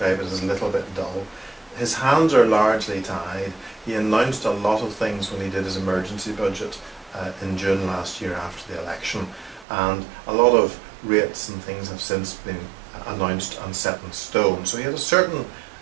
it as a little bit dull. His hands are largely tied. He announced a lot of things when he did his emergency budget in June last year after the election, and a lot of rates and things have since been announced and set in stone. So he had a certain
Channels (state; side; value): drops out; left; at 9.7 s